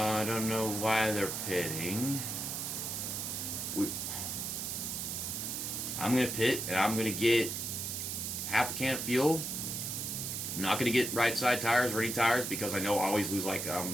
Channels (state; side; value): noise; right; hiss, 3 dB below the sound